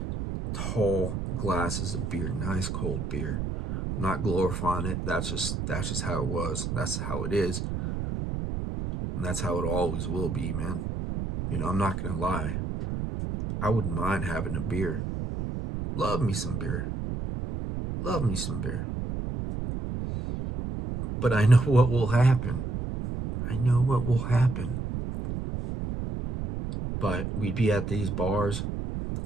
tall glasses of beer, nice cold beer. I'm not glorifying it. That's just how it was. That's how it is. And that's how it always will be, man. I'm not gonna lie. I wouldn't mind having a beer. Love me some beer. Love me some beer. But I know what will happen. I know what will happen. But we'd be at these bars.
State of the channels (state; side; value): noise; right; rumble, 4 dB below the sound